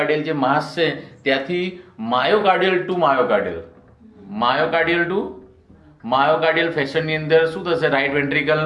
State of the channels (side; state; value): both; identical; correlation 1.00